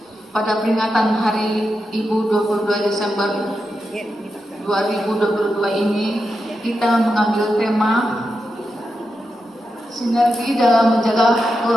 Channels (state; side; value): normal; both; correlation 0.88